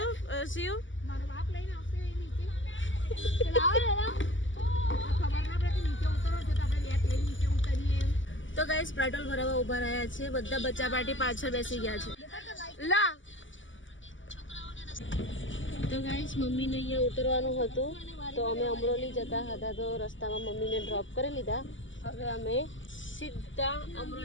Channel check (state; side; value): late; right; 0.55 ms